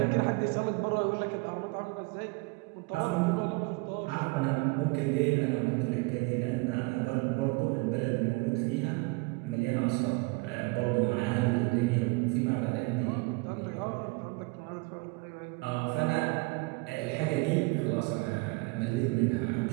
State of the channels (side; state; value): left; quieter; 27.0 dB